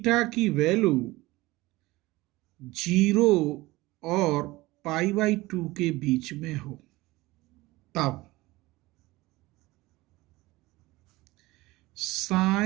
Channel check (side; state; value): left; quieter; 20.0 dB